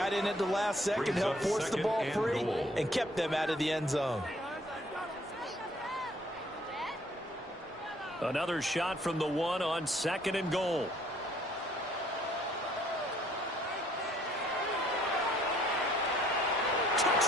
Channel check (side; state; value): both; normal; correlation 0.62